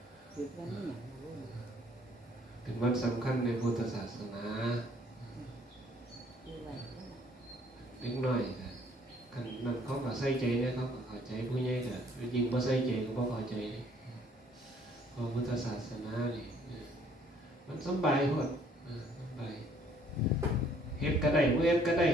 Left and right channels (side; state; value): both; normal; correlation 0.62